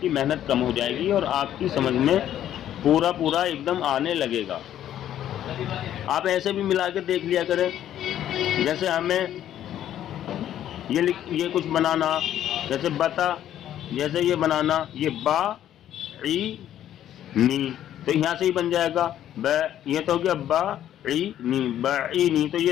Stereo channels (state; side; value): quieter; right; 11.3 dB